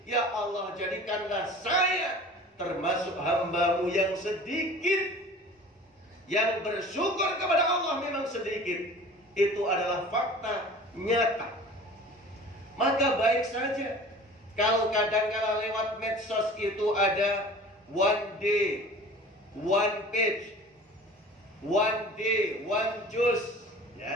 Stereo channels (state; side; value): normal; both; correlation 0.43